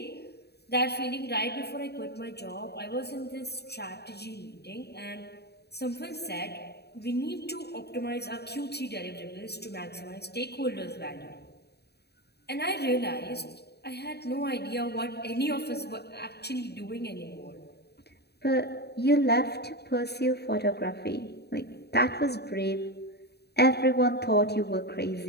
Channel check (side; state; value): right; late; 0.48 ms